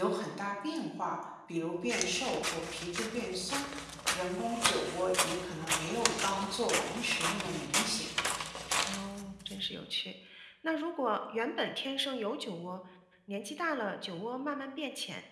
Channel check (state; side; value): identical; both; correlation 1.00